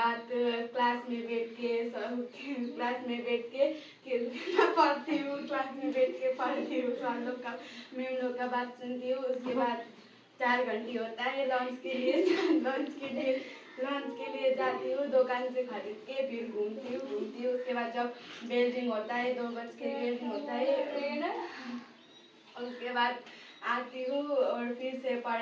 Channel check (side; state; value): both; identical; correlation 1.00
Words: क्लास में बैठ के पढ़ती हूँ, क्लास में बैठ के पढ़ती हूँ, सर लोग का मैम लोग का बात सुनती हूँ. उसके बाद 4 घंटे होता है लंच के लिए जाती हूँ, दुकान से खरीद के फिर घूमती हूँ. उसके बाद जब बेल रिंग होता है 2 बज के बेल रिंग होता है, उसके बाद आती हूँ और फिर से